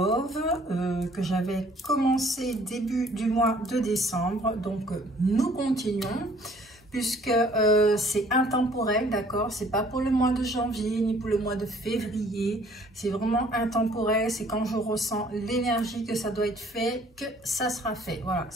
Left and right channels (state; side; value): normal; both; correlation 0.58